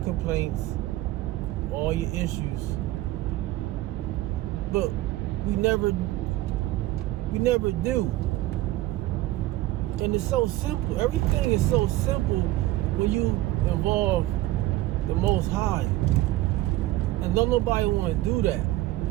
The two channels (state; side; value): quieter; left; 16.5 dB